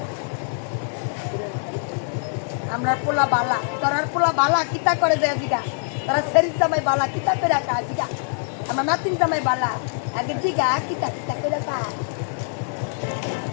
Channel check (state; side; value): silent; right; digital silence